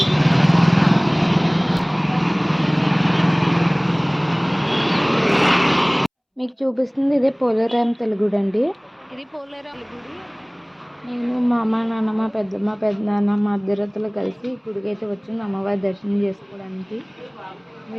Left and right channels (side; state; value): both; identical; correlation 1.00